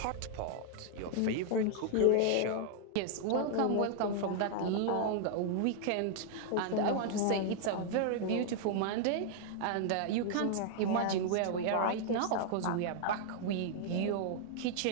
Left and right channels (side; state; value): both; different; correlation 0.00